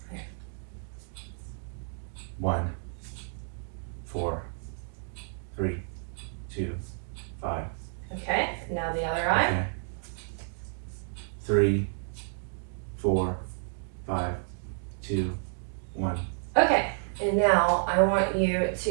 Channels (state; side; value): silent; left; digital silence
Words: 1, 4, 3, 2, 5. Okay, now the other eye. Okay. 3, 4, 5, 2, 1. Okay, and now I want you